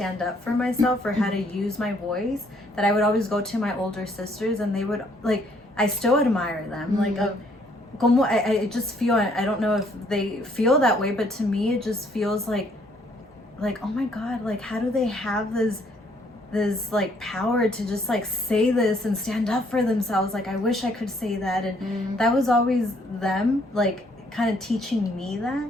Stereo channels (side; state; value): both; normal; correlation 0.66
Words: up for myself or how to use my voice. That I would always go to my older sisters and they would, like, I still admire them. Like, como I just feel, I don't know if they feel that way, but to me it just feels like, oh my God, like, how do they have this like power to just like say this and stand up for themselves? Like, I wish I could say that. And that was always them, like, kind of teaching me that.